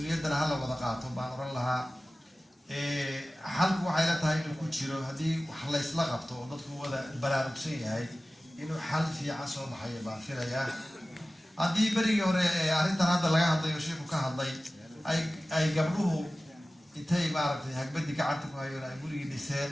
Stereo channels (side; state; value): both; normal; correlation 0.96